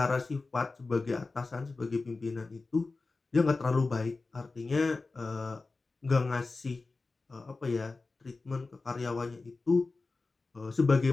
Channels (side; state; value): right; quieter; 3.7 dB